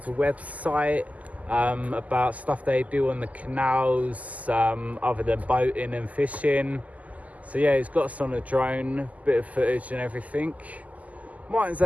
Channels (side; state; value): left; late; 0.075 ms